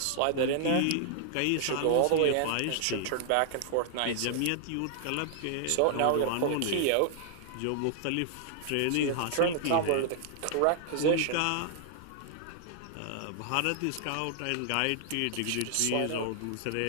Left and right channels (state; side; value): different; both; correlation 0.00